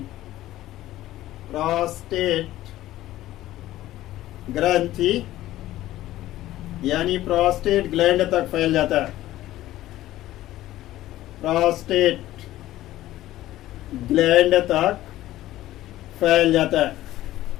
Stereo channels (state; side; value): quieter; right; 15.0 dB